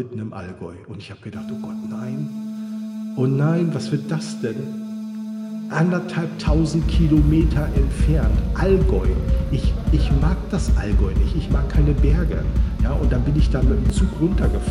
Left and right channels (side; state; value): both; identical; correlation 1.00